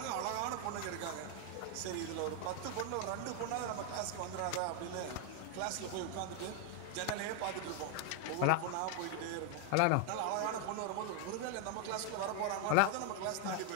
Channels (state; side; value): different; both; correlation 0.00